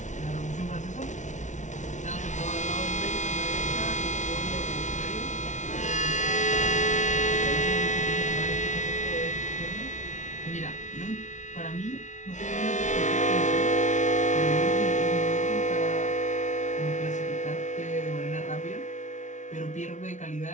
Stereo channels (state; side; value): late; right; 0.36 ms